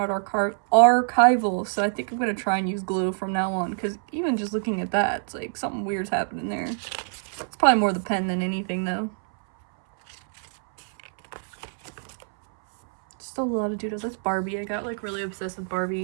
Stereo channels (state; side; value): silent; left; 61 dB below the other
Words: archival, so I think I'm gonna try and use glue from now on, because even just looking at that, it's like something weird's happening there. It's probably more the pen than anything, though. Still a lot of doodles. That's Barbie. I got like really obsessed with